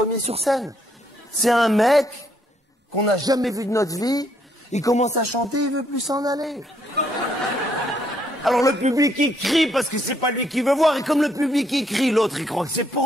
sur scène. C'est un mec qu'on n'a jamais vu de notre vie, il commence à chanter, il veut plus s'en aller. Alors le public il crie parce que c'est pas lui qui veut voir, et comme le public il crie, l'autre il croit que c'est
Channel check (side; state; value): both; normal; correlation 0.71